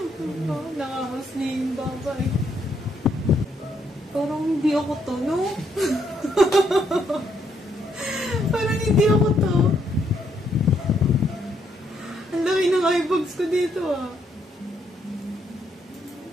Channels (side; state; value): both; normal; correlation 0.74